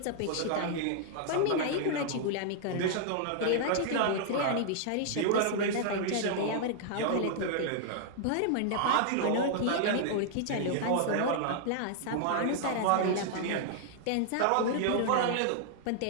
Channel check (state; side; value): different; both; correlation -0.01